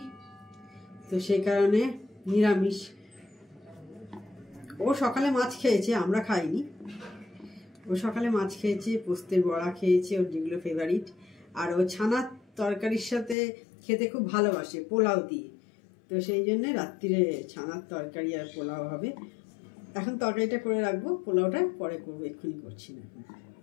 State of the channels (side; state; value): right; drops out; at 13.4 s